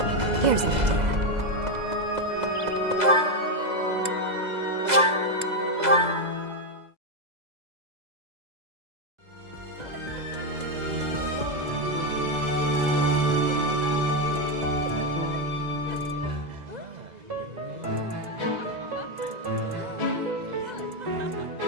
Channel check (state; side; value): late; left; 2.0 ms